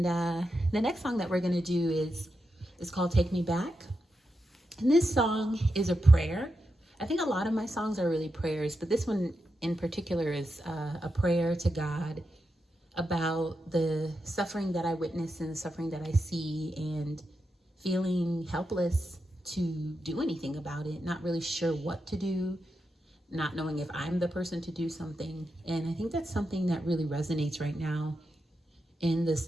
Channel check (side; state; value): both; normal; correlation 0.87